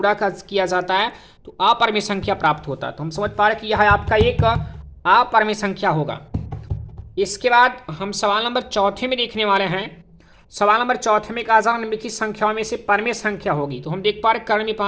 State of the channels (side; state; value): both; identical; correlation 1.00